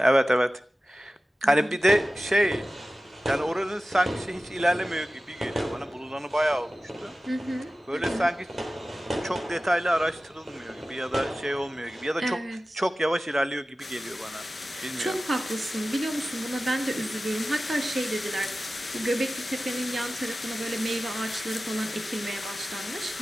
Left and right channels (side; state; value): both; normal; correlation 0.96